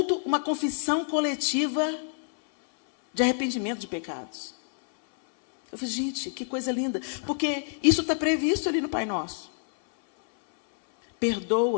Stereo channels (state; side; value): silent; right; 60 dB below the other